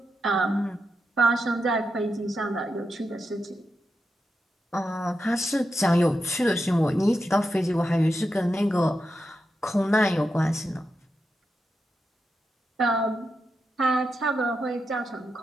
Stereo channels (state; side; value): normal; both; correlation 0.87